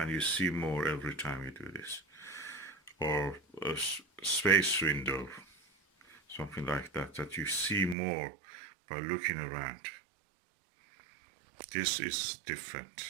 you see more every time you do this. Or a space window, something like that, that you see more by looking around. This is different.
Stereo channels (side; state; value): left; drops out; at 8.0 s